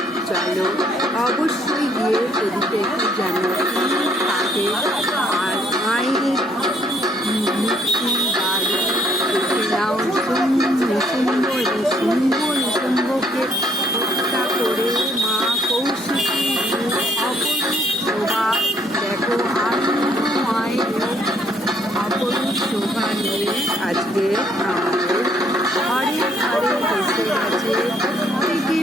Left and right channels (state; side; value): normal; both; correlation 0.66